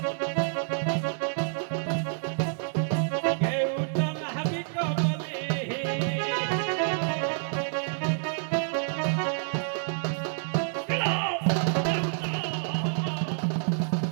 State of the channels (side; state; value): left; silent; digital silence